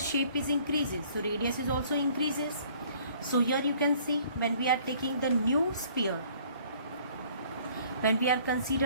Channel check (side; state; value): both; inverted; correlation -0.56